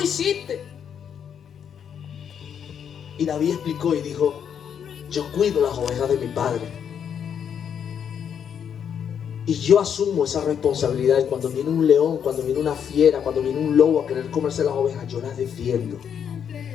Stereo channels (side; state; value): right; quieter; 8.1 dB